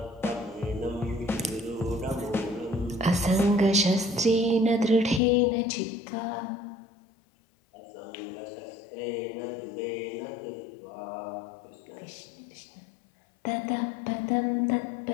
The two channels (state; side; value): drops out; right; at 5.2 s